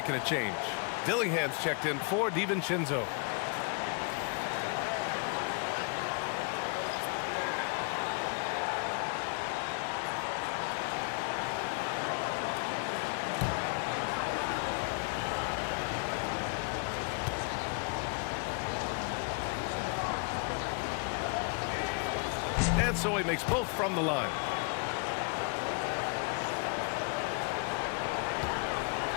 a change. Dillingham's checked in for DiVincenzo. And so he makes both from the line.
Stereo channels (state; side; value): quieter; right; 37.3 dB